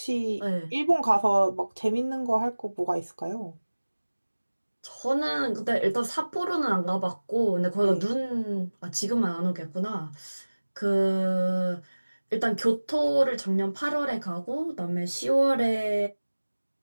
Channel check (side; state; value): both; inverted; correlation -1.00